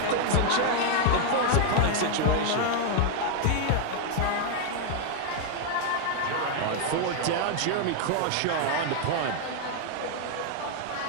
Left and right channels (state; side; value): different; both; correlation 0.00